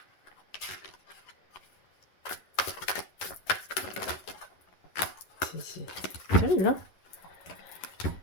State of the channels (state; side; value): late; right; 11 ms